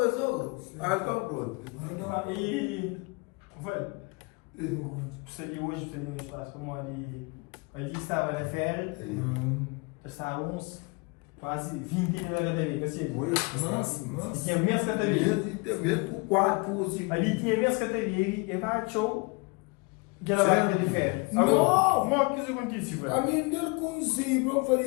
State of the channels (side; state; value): right; quieter; 29.2 dB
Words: eu sou grobo. Ah, então pronto. E, velho, precisaria hoje, precisaria no espaço, como ali estava na férias, estávamos quase 20 na categoria, assim. Nossa. E tinha menos categoria. Mesmo 4, 5. Ali tinha menos categoria, e vai show. Que ela vai de férias. Não! Como é que isso acontece, velho? A mim del conselho para